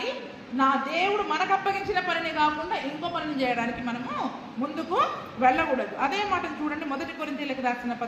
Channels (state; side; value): identical; both; correlation 1.00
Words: నా దేవుడు మనకు అప్పగించిన పనిని కాకుండా ఇంకో పనిని చేయడానికి మనము ముందుకు వెళ్ళకూడదు. అదే మాటను చూడండి, 1 కొరింథీయులకు రాసిన